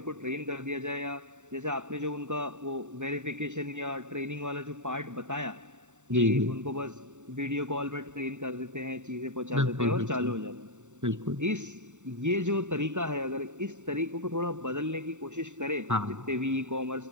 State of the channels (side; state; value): left; late; 0.84 ms